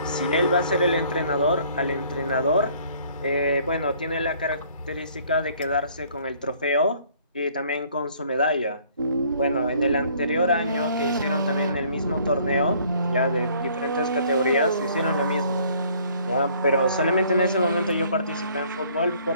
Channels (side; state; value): both; inverted; correlation -0.59